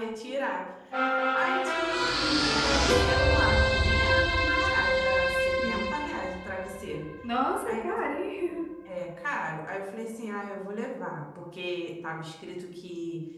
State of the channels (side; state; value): both; identical; correlation 1.00